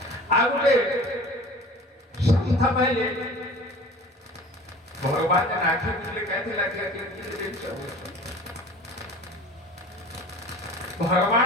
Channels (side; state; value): both; normal; correlation 0.42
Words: ଆଉ ଗୋଟେ ସନ୍ଥ ପାଇଲେ ଭଗବାନ ଆଖି ବୁଝିଲେ କେମିତି ଲାଗିଲା